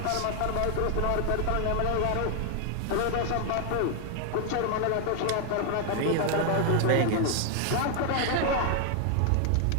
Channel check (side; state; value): both; different; correlation 0.00